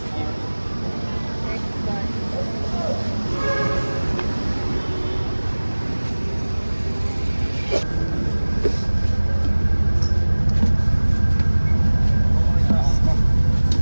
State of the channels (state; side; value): inverted; both; correlation -1.00